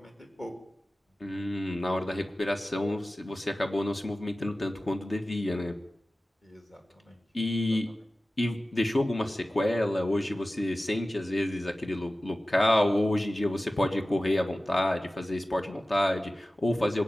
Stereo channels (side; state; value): both; normal; correlation 0.96